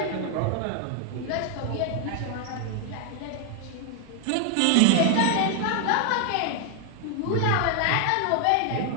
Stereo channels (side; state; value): both; different; correlation 0.00